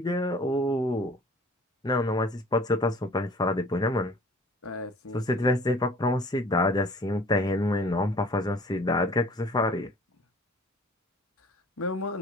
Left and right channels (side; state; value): both; normal; correlation 0.49